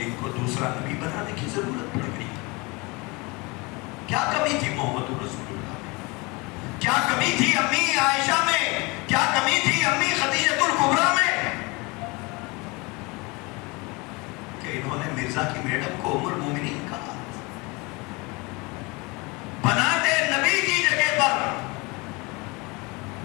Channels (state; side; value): quieter; right; 26.3 dB